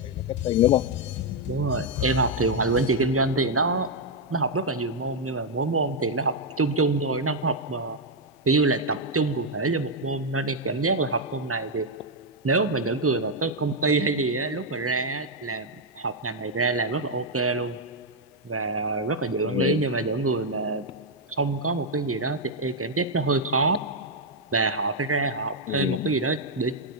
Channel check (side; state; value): both; normal; correlation -0.01